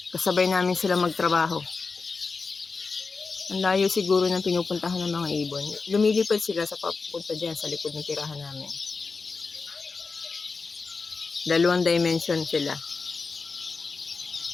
Kasabay namin sila magtrabaho. Ang layo siguro ng pinupuntahan ng mga ibon. Lumilipad sila sa papunta dyan sa likod ng tirahan namin. 2 dimension sila.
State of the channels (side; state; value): right; quieter; 4.5 dB